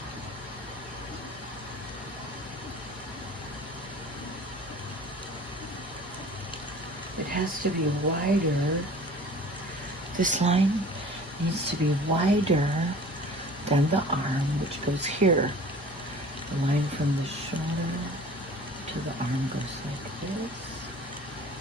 It has to be wider. This line needs to be wider than the arm, which goes here. The line from the shoulder to the arm goes like this.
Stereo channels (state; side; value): normal; both; correlation 0.45